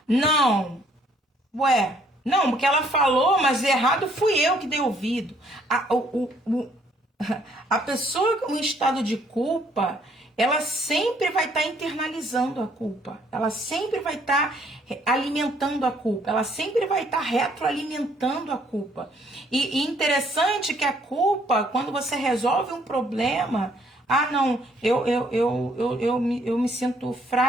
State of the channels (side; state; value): both; normal; correlation 0.65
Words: Não. Ué, não, porque ela falou, mas errado fui eu que dei ouvido. A pessoa com estado de culpa, ela sempre vai estar internalizando a culpa. Ela sempre vai estar alimentando a culpa. Ela sempre vai estar retroalimentando a culpa. E interessante que a culpa, quando você resolve um problema, não, eu me sinto